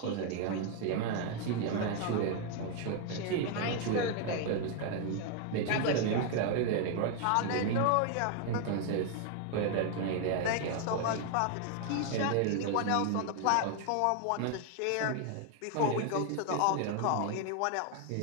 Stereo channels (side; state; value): both; different; correlation 0.00